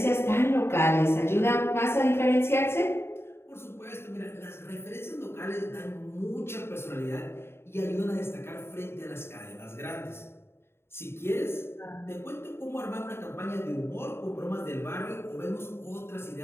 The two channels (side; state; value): right; late; 0.12 ms